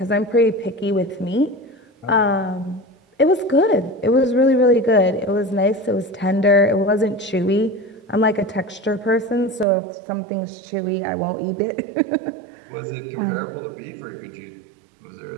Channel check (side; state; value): left; drops out; at 9.7 s